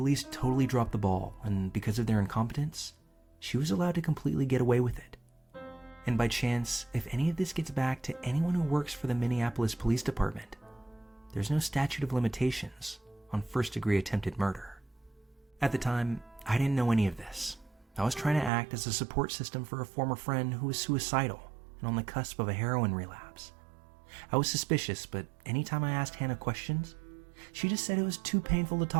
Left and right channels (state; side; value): drops out; left; at 18.5 s